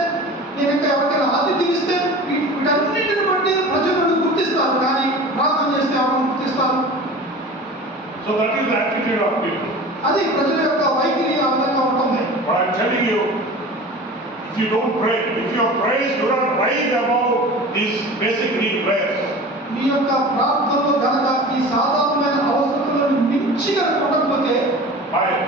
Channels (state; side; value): normal; both; correlation 0.37